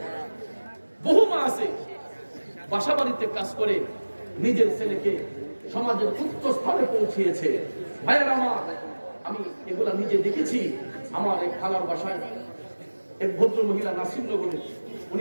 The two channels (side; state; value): both; inverted; correlation -1.00